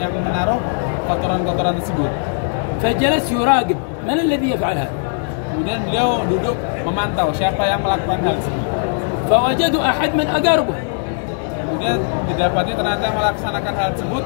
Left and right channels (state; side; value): silent; right; digital silence